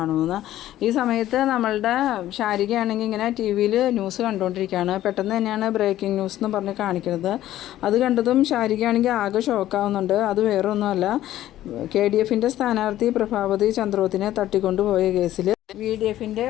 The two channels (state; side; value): quieter; right; 13.5 dB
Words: ഈ സമയത്ത് നമ്മളുടെ ശാരികയാണെങ്കിൽ ഇങ്ങനെ TV-യിൽ ന്യൂസ് കണ്ടുകൊണ്ടിരിക്കുകയാണ്. പെട്ടെന്ന് തന്നെയാണ് ബ്രേക്കിംഗ് ന്യൂസ് എന്ന് പറഞ്ഞ് കാണിക്കുന്നത്. അത് കണ്ടതും ശാരികയാണെങ്കിൽ ആകെ ഷോക്കാവുന്നുണ്ട്. അത് വേറെ ഒന്നുമല്ല, KDFൻ്റെ സ്ഥാനാർത്ഥി പ്രഭാവതി ചന്ദ്രോത്തിനെ തട്ടിക്കൊണ്ടുപോയ കേസിൽ VDFൻ്റെ